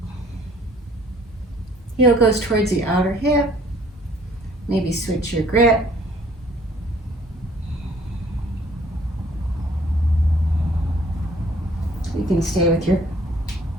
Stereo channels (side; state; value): both; normal; correlation 0.57